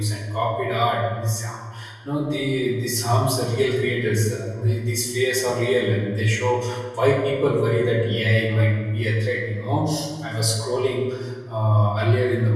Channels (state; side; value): identical; both; correlation 1.00